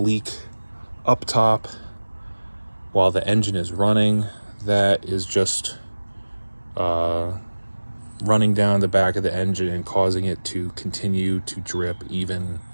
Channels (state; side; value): inverted; both; correlation -1.00